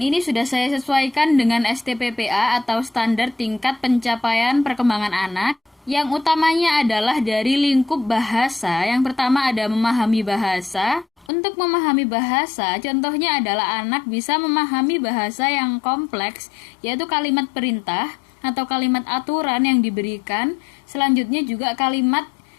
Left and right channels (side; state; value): right; drops out; at 11.3 s